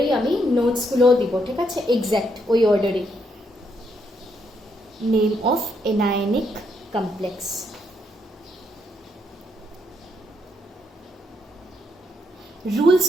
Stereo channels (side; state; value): both; normal; correlation 0.76